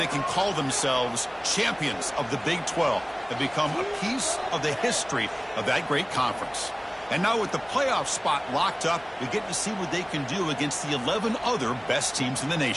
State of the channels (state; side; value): identical; both; correlation 1.00